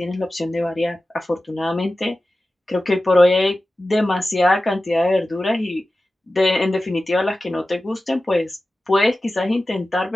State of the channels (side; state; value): both; normal; correlation 0.95